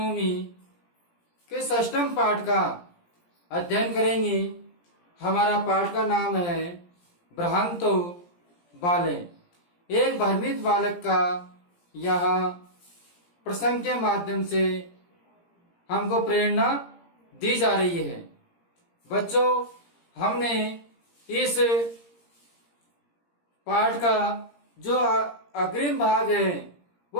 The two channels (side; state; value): right; late; 17 ms